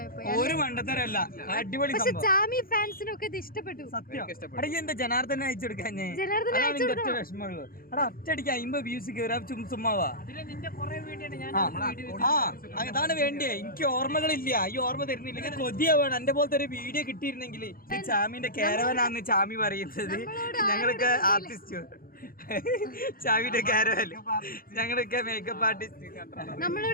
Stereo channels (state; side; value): late; right; 0.42 ms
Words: അടിപൊളി. പക്ഷെ ചാമി ഫാൻസിനൊക്കെ ഇത് ഇഷ്ടപ്പെട്ടു. എന്താ ജനാർദ്ദനെ അയച്ചു കൊടുക്കാൻ? വിഷമമുള്ളൂ. ഒറ്റയടിക്ക് 50 വ്യൂസ് കയറാ ചുമ്മാവാ. അതാണ് വേണ്ടിയേ. എനിക്ക് ഓർമ്മകളില്ല, ഈ ഓർമ്മ തരുന്നില്ല. കൊതിയാവാണ്. എന്റെ പോലത്തെ ഒരു വീഡിയോ കിട്ടിയിരുന്നെങ്കിൽ. ഈ ചാമിന്റെ കാരവനാന്ന് ചാമി പറയുന്നത്. ഞങ്ങളൊക്കെ ആർട്ടിസ്റ്റ്, ചാമിന്റെ കാരവല്, ഞങ്ങളൊക്കെ മേക്കപ്പ് ആർട്ടിസ്റ്റ്.